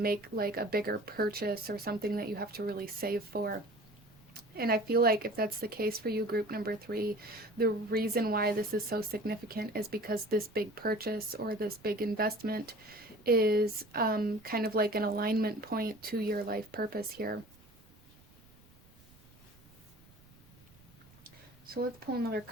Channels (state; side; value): noise; right; rumble, 26 dB below the sound